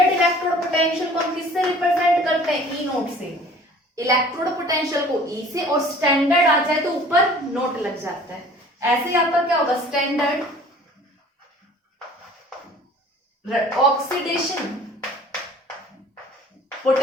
इलेक्ट्रोड पोटेंशियल को हम किससे रिप्रेजेंट करते हैं ई नोट से, इलेक्ट्रोड पोटेंशियल को ई से, और स्टैंडर्ड आ जाए तो ऊपर नोट लग जाता है। ऐसे ही आपका क्या होगा स्टैंडर्ड ऑक्सीडेशन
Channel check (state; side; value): normal; both; correlation 0.49